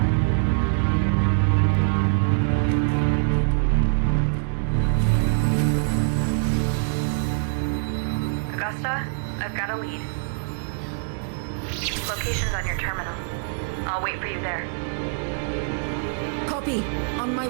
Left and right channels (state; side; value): silent; left; digital silence